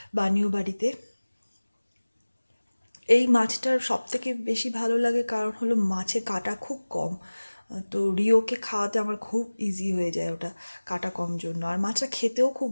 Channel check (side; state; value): both; inverted; correlation -1.00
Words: বানিও বাড়িতে। এই মাছটার সব থেকে বেশি ভালো লাগে কারণ হলো মাছে কাটা খুব কম, তো রিওকে খাওয়াতে আমার খুব ইজি হয়ে যায় ওটা, কাটা কম জন্য। আর মাছটা খেতেও খুব